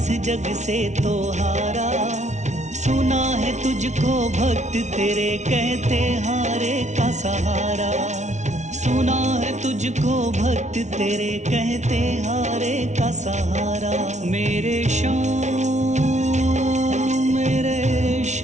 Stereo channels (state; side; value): late; left; 0.33 ms